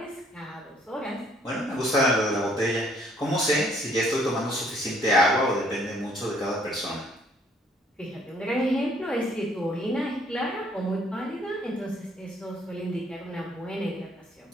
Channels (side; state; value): both; normal; correlation 0.63